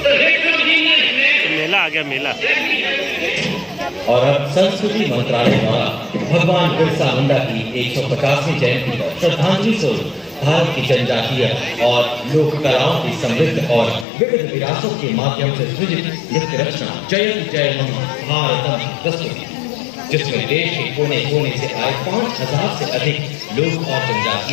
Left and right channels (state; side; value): drops out; right; at 14.1 s